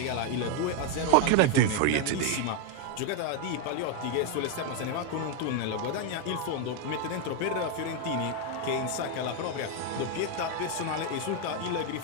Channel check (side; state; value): both; different; correlation 0.01